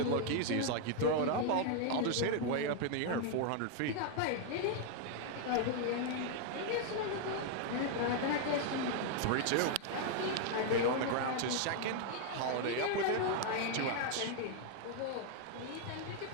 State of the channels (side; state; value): both; different; correlation 0.00